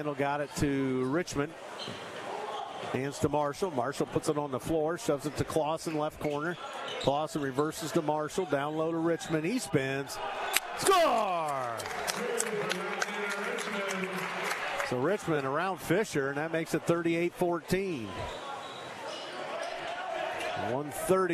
got it to Richmond. Hands to Marshall. Marshall puts it on the floor, shoves it to Clausen, left corner. Clausen reverses to Marshall, down low to Richmond. He spins. Score! So Richmond around Fisher, and that makes it 38-14.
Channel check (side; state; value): both; identical; correlation 1.00